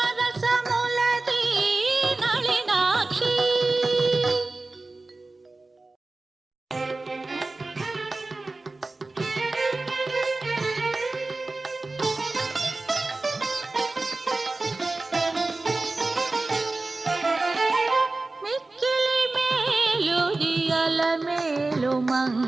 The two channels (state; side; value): quieter; left; 3.3 dB